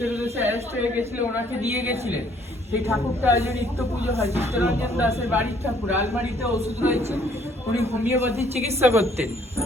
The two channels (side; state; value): both; normal; correlation 0.62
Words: উদ্দেশ্যে অ্যারেস্ট হয়ে গেছিল, ওনাকে দিয়ে গেছিলেন। সেই ঠাকুরটা আজ নিত্য পুজো হয়। চিত্তরঞ্জন দাসের বাড়ির ঠাকুর। আলমারিতে ওষুধ রয়েছে, উনি হোমিওপ্যাথির চিকিৎসা করতেন